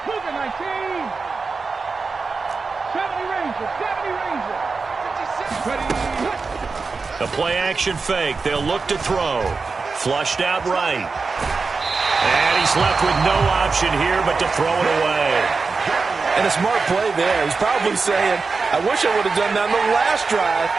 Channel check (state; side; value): quieter; left; 4.4 dB